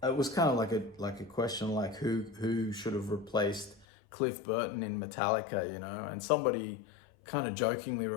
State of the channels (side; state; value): right; drops out; at 3.9 s